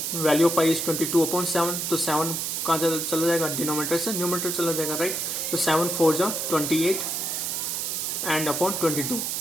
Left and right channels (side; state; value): right; noise; hiss, 2 dB below the sound